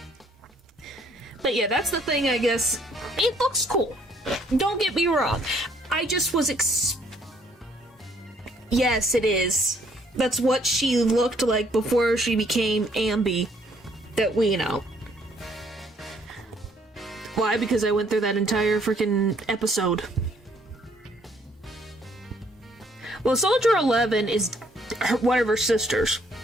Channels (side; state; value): both; normal; correlation 0.65